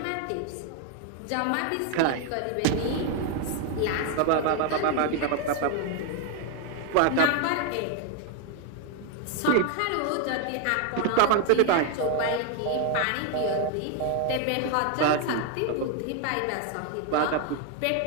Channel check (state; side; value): different; both; correlation 0.01